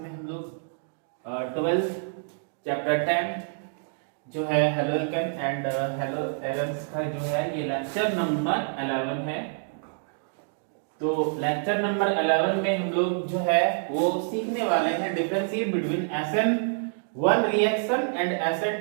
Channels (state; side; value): silent; left; digital silence